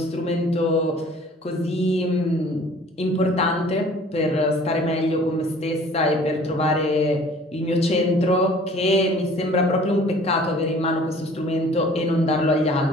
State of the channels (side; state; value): both; normal; correlation 0.51